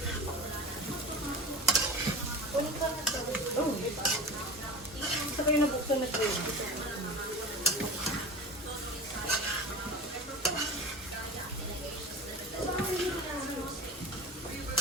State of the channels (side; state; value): both; normal; correlation 0.32